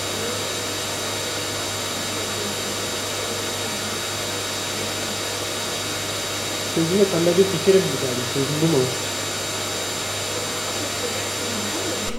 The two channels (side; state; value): both; identical; correlation 1.00